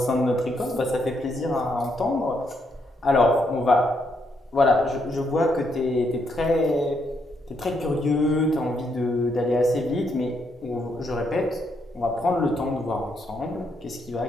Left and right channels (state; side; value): normal; both; correlation 0.76